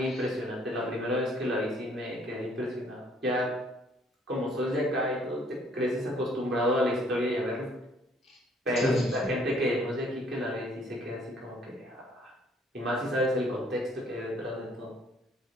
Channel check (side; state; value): both; normal; correlation 0.62